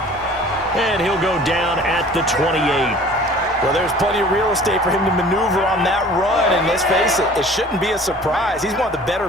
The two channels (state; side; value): normal; both; correlation 0.48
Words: And he'll go down at the 28. Well, there's plenty of real estate for him to maneuver on that run, and let's face it, it shouldn't be a surprise. He's one of the better